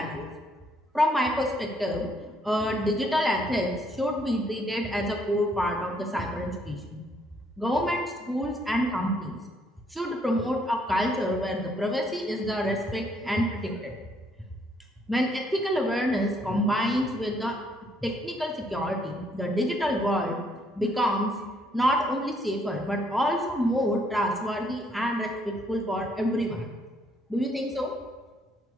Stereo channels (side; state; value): both; normal; correlation 0.69